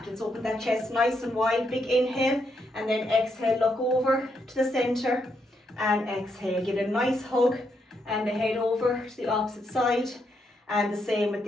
Let's open that chest nice and wide. Big inhale and then exhale. Look over to the center and exhale. Give it a nice hug and the head over to the opposite side. And the same with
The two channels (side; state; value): both; normal; correlation 0.79